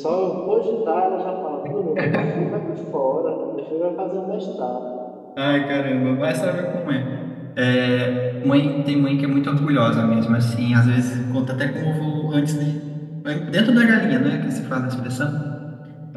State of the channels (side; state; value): both; identical; correlation 1.00